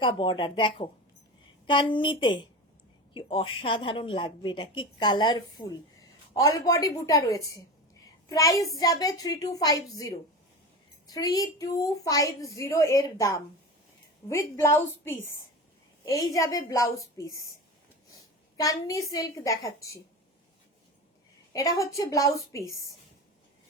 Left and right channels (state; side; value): normal; both; correlation 0.27